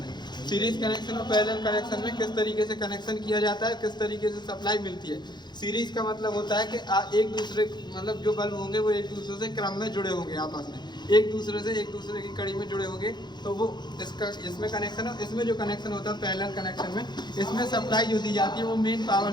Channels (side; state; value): right; late; 0.21 ms